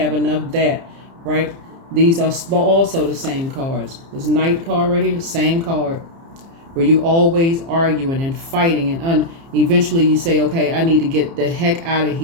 enough that, right? These are also the same cards. This Knight card right here, same card. Where you're always arguing and fighting Eventually you say, okay, I need to get the heck out of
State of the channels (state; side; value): late; left; 30 ms